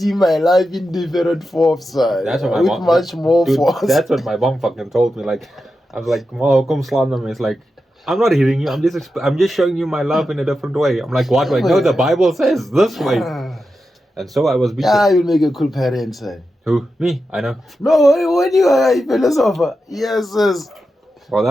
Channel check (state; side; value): normal; both; correlation 0.89